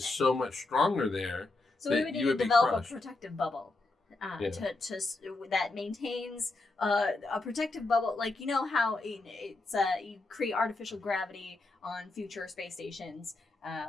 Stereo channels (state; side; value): quieter; right; 3.2 dB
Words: so much stronger there. So we would need to develop a protective bubble to that maintains a protective bubble. Like, you know how it's you create artificial gravity on future space stations,